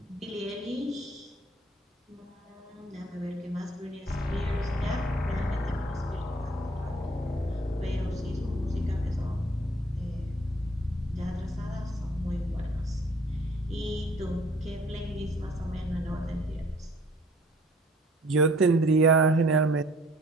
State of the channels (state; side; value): normal; both; correlation 0.57